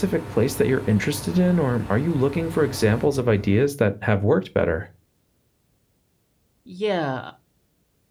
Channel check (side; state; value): both; identical; correlation 1.00